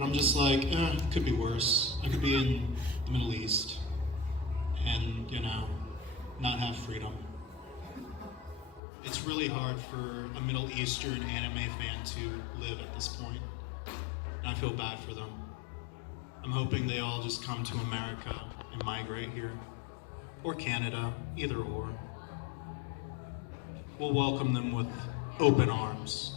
I'm just it could be worse. I could be in the Middle East and, not have freedom. It's really hard for a Middle Eastern anime fan to live at this point. And I feel bad for them. I'm hoping they all just come to America and migrate here. Or Canada, either or. We'll welcome them with open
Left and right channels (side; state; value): right; drops out; at 8.8 s